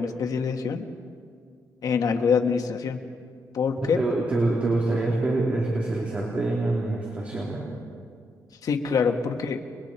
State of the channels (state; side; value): normal; both; correlation 0.79